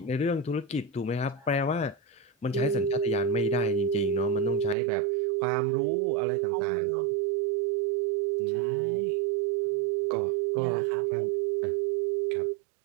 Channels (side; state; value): left; drops out; at 4.8 s